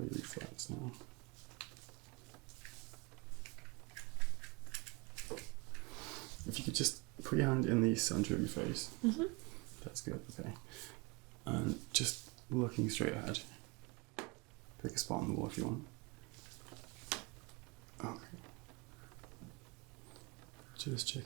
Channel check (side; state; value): left; quieter; 27.2 dB